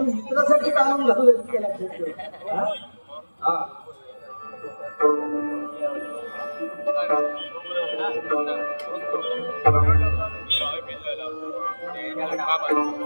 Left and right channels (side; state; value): both; inverted; correlation -1.00